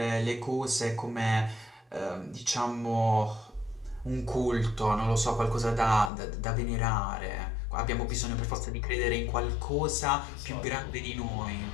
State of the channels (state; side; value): drops out; right; at 6.1 s